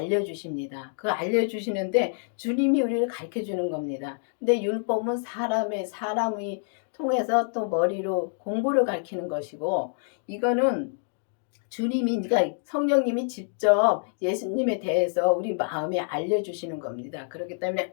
그 알려주시는데 주님이 우리를 가르쳐 주는 겁니다. 근데 율법은 사람이 통해서 또 머리로 공부를 가르치는 것이고 이거는 그러니까 성령님이 직접 예수님에 대해서 우리 마음에 알려주시는 겁니다. 그렇기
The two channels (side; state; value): right; silent; digital silence